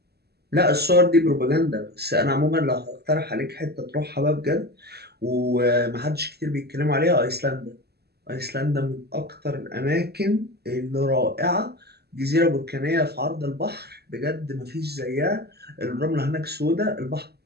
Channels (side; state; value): left; late; 0.47 ms